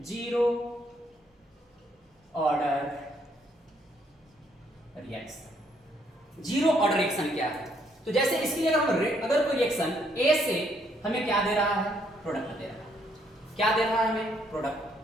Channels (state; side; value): normal; both; correlation 0.70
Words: zero order reaction. Zero order reaction क्या है, तो जैसे इसके लिए अगर कोई रिएक्शन ए से हमें क्या दे रहा है, प्रोडक्ट दे रहा है। क्या दे रहा है हमें, प्रोडक्ट